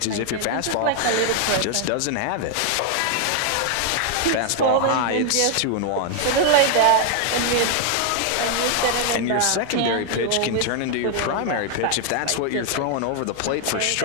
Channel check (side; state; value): both; different; correlation 0.00